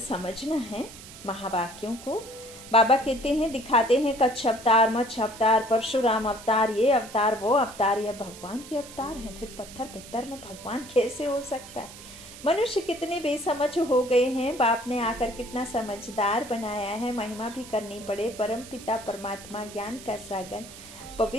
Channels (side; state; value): right; noise; hiss, 16 dB below the sound